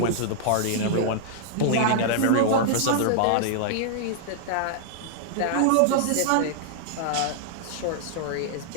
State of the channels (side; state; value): both; different; correlation -0.01